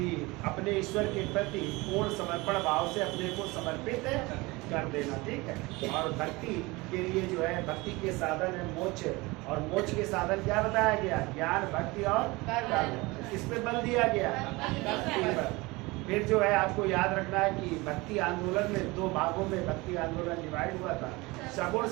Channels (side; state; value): left; quieter; 23.1 dB